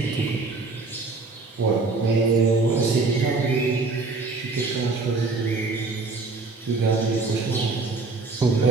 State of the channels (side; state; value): left; quieter; 3.8 dB